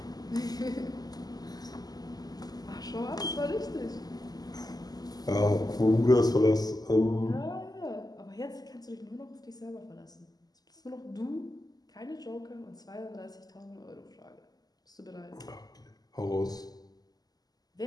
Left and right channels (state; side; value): late; right; 0.19 ms